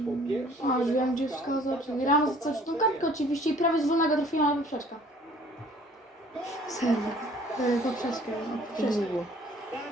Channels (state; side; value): normal; both; correlation 0.54